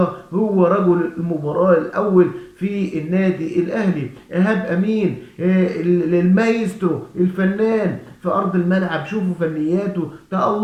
هو رجل المباراة الأول في النادي الأهلي. إيهاب أمين المايسترو الفنان في أرض الملعب، شوفوا فنياته،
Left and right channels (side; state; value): both; identical; correlation 1.00